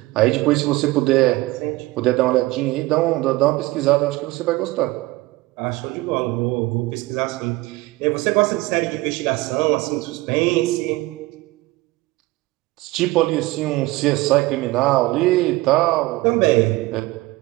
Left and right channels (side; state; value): left; quieter; 20.1 dB